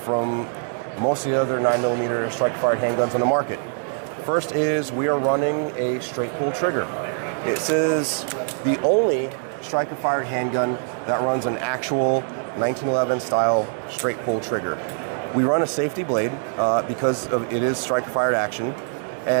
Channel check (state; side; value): silent; left; 63 dB below the other